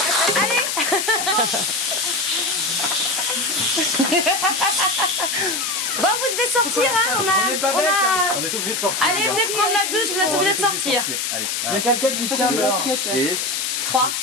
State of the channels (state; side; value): noise; left; hiss, 1 dB below the sound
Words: Allez. Bon, vous devez sortir, hein. On est obligé de sortir. Allez, venez prendre la douche, vous êtes obligés de sortir. Allez. Il y a quelqu'un qui tient le basket. Et 3.